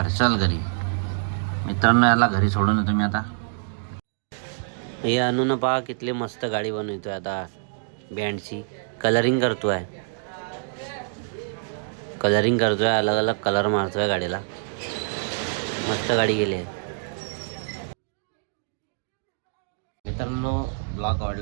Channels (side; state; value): left; silent; digital silence